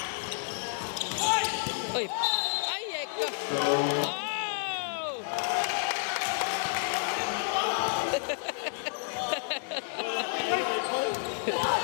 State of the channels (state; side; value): silent; right; 58 dB below the other